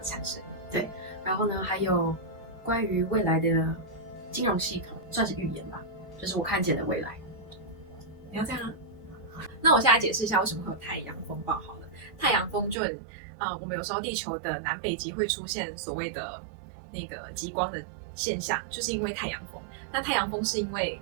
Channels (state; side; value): drops out; left; at 12.8 s